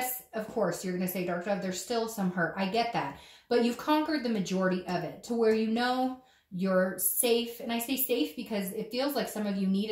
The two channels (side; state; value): both; identical; correlation 1.00